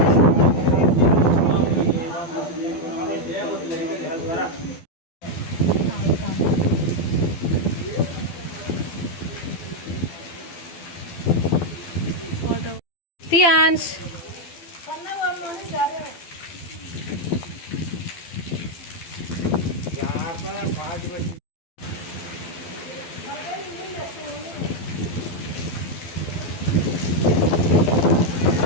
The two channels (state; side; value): late; right; 12 ms